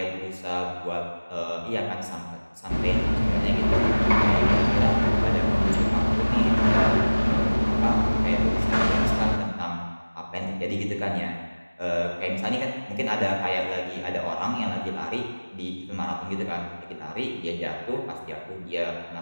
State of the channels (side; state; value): both; inverted; correlation -1.00